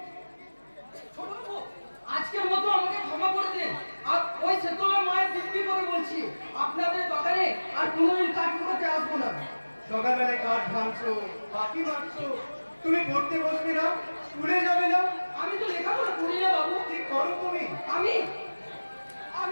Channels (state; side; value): inverted; both; correlation -1.00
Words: ছোট বাবু, আজকের মতো আমাকে ক্ষমা করে দিন। আর ওই সেতলা মায়ের দিব্যি করে বলছি, আপনাদের বাগানে আর কোনোদিন কাঠ করতে আসবো না। সকালবেলায় কাঠ ভাঙছো, পাখি মারছো, তুমি পড়তে বসবে না, স্কুলে যাবে না, আমি তো লেখাপড়া করি না বাবু। কি করো তুমি? আমি